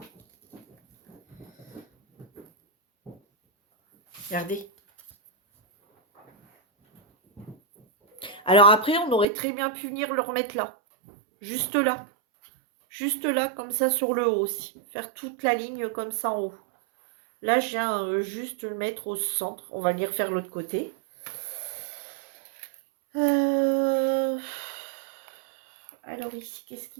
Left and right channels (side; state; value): left; drops out; at 9.2 s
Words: Regardez. Alors après, on aurait très bien pu venir le remettre là. Juste là. Juste là, comme ça, sur le haut aussi. Faire toute la ligne comme ça en haut. Là, je viens juste le mettre au centre. On va venir faire l'autre côté. Alors ici, qu'est-ce